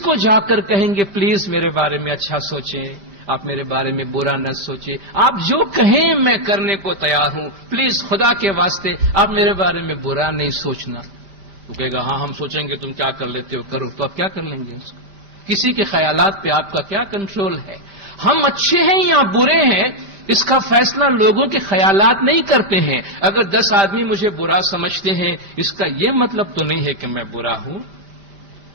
جا کر کہیں گے پلیز میرے بارے میں اچھا سوچیں, آپ میرے بارے میں برا نہ سوچیں, آپ جو کہیں میں کرنے کو تیار ہوں, پلیز خدا کے واسطے آپ میرے بارے میں برا نہیں سوچنا. تو کہے گا ہاں ہم سوچیں گے, تم کیا کر لیتے ہو کرو. تو آپ کیا کر لیں گے اس کو؟ کسی کے خیالات پہ آپ کا کیا کنٹرول ہے؟ ہم اچھے ہیں یا برے ہیں اس کا فیصلہ لوگوں کے خیالات نہیں کرتے ہیں. اگر 10 آدمی مجھے برا سمجھتے ہیں اس کا یہ مطلب تو نہیں ہے کہ میں برا ہوں,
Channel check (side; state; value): left; late; 5.1 ms